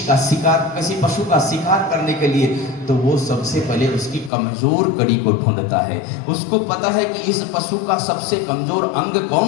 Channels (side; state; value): right; drops out; at 4.3 s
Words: का शिकार, किसी पशु का शिकार करने के लिए, तो वो सबसे पहले उसकी कमजोर कड़ी को ढूंढता है। उसको पता है कि इस पशु का सबसे कमजोर अंग